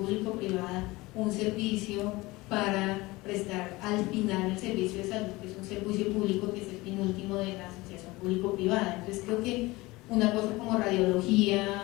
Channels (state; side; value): quieter; right; 21.2 dB